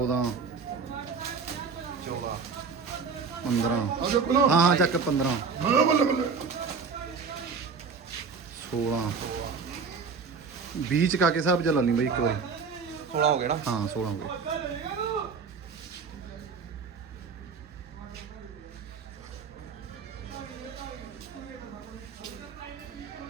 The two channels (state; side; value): quieter; left; 5.4 dB